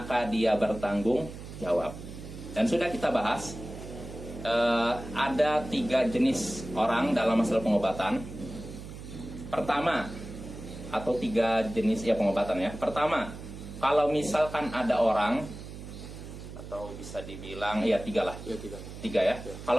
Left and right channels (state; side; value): noise; right; hum, 12 dB below the sound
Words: dia bertanggung jawab. Dan sudah kita bahas, ada 3 jenis orang dalam masalah pengobatan. Pertama, atau 3 jenis ya pengobatan ya. Pertama, kalau misalkan ada orang, atau bisa dibilang ya 3 lah. Ya, 3 ya.